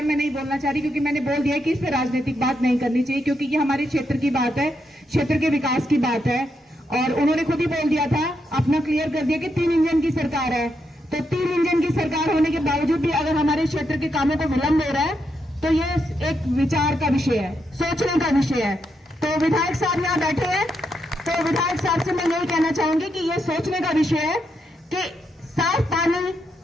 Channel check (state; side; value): normal; both; correlation 0.81